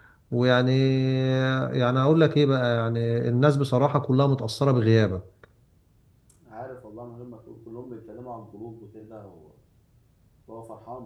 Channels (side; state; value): both; identical; correlation 1.00